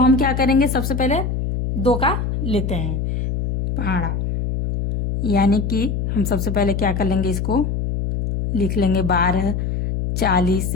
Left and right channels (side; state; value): left; noise; hum, 1 dB below the sound